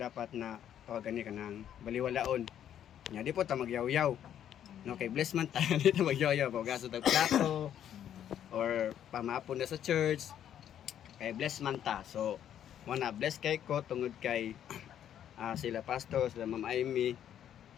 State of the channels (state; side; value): quieter; right; 10.2 dB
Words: na tawagan ni kanang baliwalaon. Nya di po ta magyaw-yaw. No, kay bless man tayo dito magyoyo pagaso tag plato or pamapon na sa church kay bless man ta so wana bless kay ko tungod kay sila pastor sila Ma'am Amy